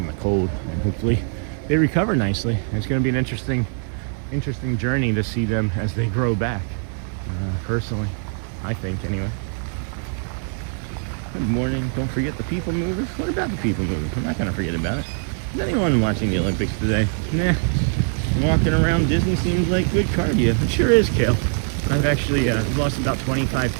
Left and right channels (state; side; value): silent; left; 55 dB below the other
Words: the cold, and hopefully they recover nicely. It's going to be an interesting journey to see them as they grow back. Personally, I think anyway. Good morning. Don't forget the people movers. What about the people movers? I'm not going to forget about it. Is anyone watching the Olympics today? Nah. Walking around Disney seems like good cardio. It sure is, Kale. I've actually lost about 25